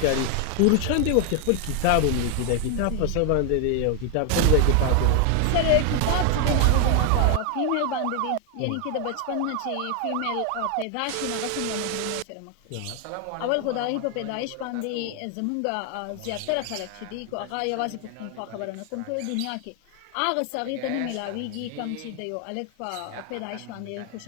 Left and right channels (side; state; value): both; different; correlation 0.00